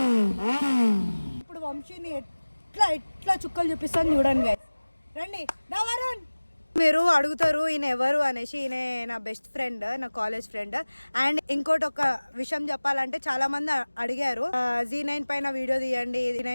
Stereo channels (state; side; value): inverted; both; correlation -1.00